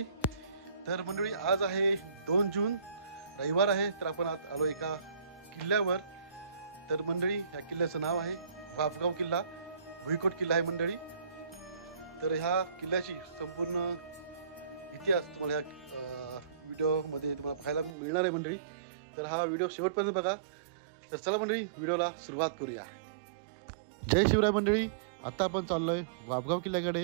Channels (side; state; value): left; drops out; at 17.9 s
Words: तर मंडळी आज आहे 2 जून, रविवार आहे। तर आपण आज आलो एका किल्ल्यावर। तर मंडळी ह्या किल्ल्याचं नाव आहे वाफगाव किल्ला, भुईकोट किल्ला आहे मंडळी। तर ह्या किल्ल्याची संपूर्ण इतिहास तुम्हाला ह्या व्हिडिओमध्ये तुम्हाला पाहायला मिळणार आहे मंडळी। तर हा व्हिडिओ शेवटपर्यंत बघा। तर चला मंडळी व्हिडिओला सुरुवात करूया। जय शिवराय मंडळी, आता आपण चाललोय वाफगाव किल्ल्याकडे।